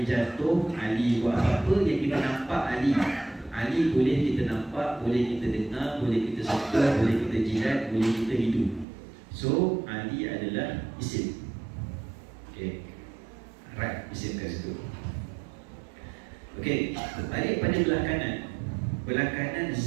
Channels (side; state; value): left; drops out; at 8.8 s